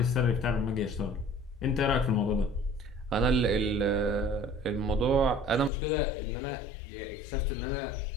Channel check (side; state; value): right; drops out; at 5.7 s